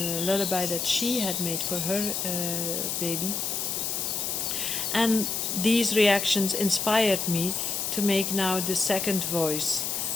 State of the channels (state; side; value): noise; left; hiss, 1 dB below the sound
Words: that she had made for her baby. And these reactions inspired me to make now the second voice